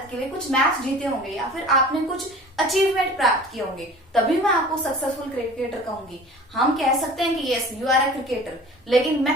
के लिए कुछ मैच जीते होंगे या फिर आपने कुछ अचीवमेंट प्राप्त किए होंगे, तभी मैं आपको सक्सेसफुल क्रिकेटर कहूंगी. हम कह सकते हैं कि yes you are a cricketer, लेकिन मैं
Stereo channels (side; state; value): both; normal; correlation 0.43